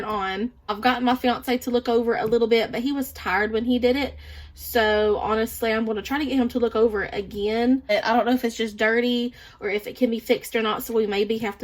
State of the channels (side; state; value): both; identical; correlation 1.00